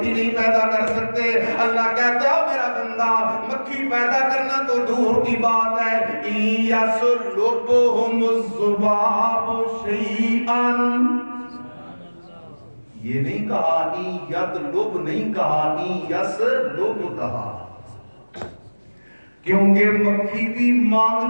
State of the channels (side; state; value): both; inverted; correlation -1.00